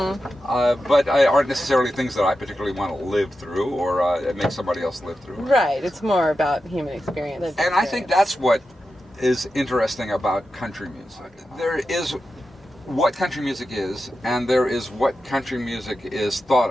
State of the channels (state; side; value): normal; both; correlation 0.91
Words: aren't necessarily things that I particularly want to live through or make somebody else live through. Right, it's more about human experience. And I think that's what is interesting about country music. There is what country music is, and there is what country music is